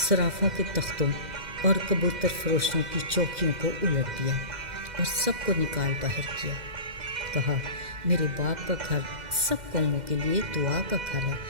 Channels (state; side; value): late; left; 2.0 ms